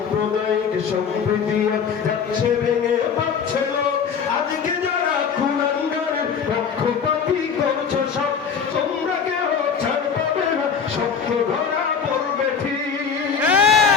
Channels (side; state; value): right; quieter; 6.5 dB